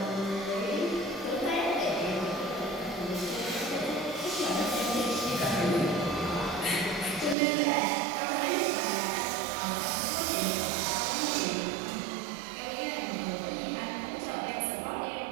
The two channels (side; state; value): left; drops out; at 7.4 s